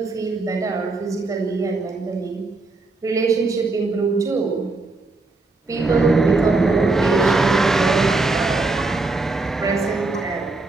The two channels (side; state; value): left; quieter; 3.4 dB